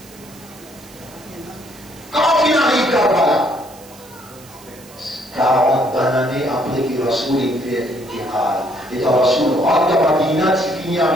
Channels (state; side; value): noise; right; hiss, 22 dB below the sound